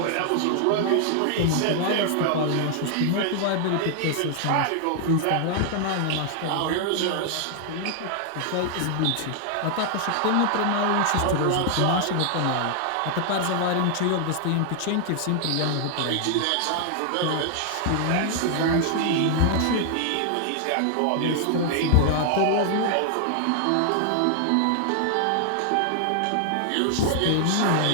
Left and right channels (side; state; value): both; different; correlation 0.00